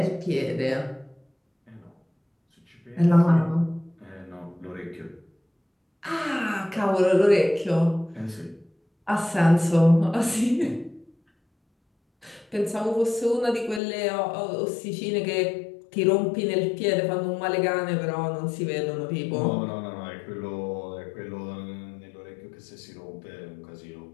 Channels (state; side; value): drops out; right; at 13.8 s